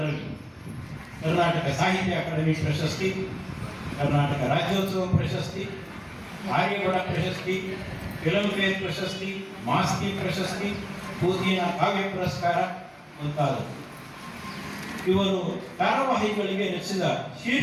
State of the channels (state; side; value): identical; both; correlation 1.00